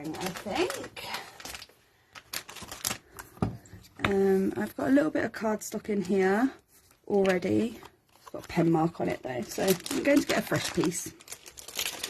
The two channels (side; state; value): both; identical; correlation 1.00